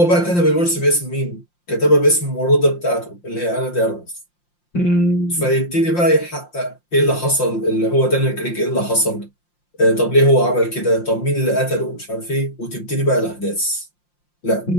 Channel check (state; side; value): late; right; 5.7 ms